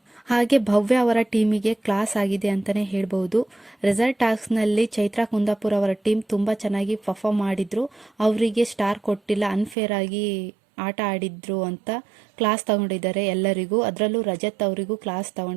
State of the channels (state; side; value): drops out; left; at 9.8 s